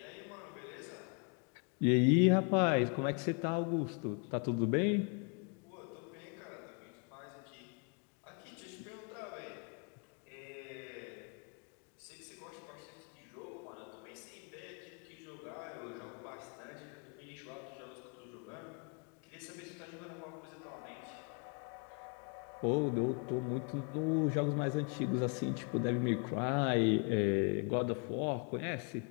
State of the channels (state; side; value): quieter; right; 38.2 dB